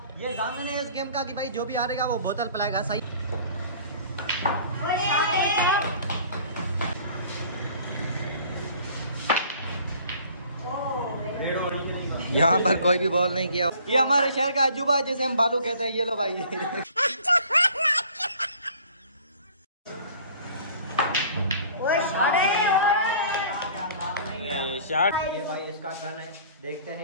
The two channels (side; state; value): both; inverted; correlation -0.50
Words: ये जामिन है इस गेम का कि भाई जो भी हारेगा वो बोतल पिलाएगा। सही। यहाँ पर कोई भी बॉल नहीं किया। ये हमारे शहर का अजूबा है जिसे हम बालू कहते हैं। ये लो भाई शॉट। ये भाई इसका टर्न है, देखते